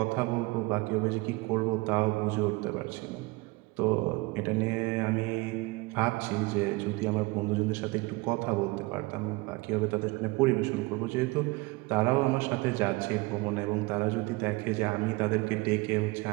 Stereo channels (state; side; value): quieter; left; 23.7 dB